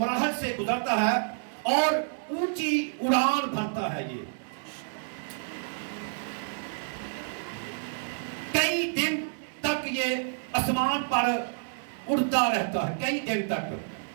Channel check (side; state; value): left; silent; digital silence